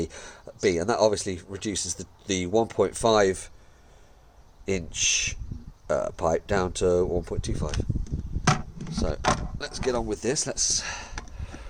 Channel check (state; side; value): identical; both; correlation 1.00